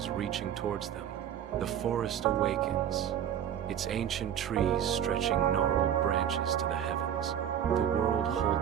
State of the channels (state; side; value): quieter; left; 9.7 dB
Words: reaching towards them. The forest awakens, its ancient trees stretching gnarled branches to the heavens. The world